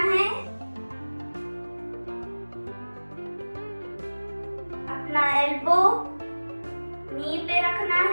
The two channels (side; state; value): both; inverted; correlation -1.00